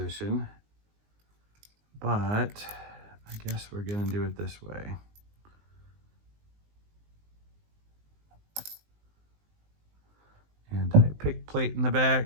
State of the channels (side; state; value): left; late; 19 ms